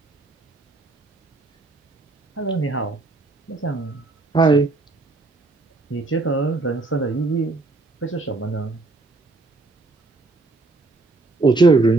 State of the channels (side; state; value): left; quieter; 3.3 dB